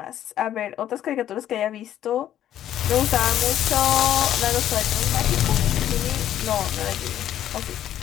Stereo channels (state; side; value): quieter; right; 11.5 dB